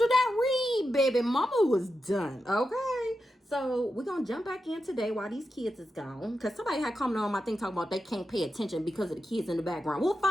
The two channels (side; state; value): both; normal; correlation 0.89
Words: that read, baby, mama was done. Okay. So we're gonna jump back in today while these kids is gone. Because somebody had commented on my thing talking about they can't pay attention because of the kids in the background. We'll